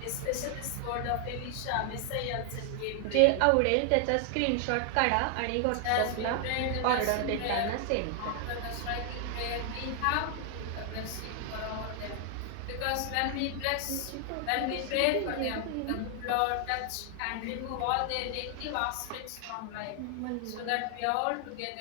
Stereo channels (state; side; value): different; both; correlation 0.00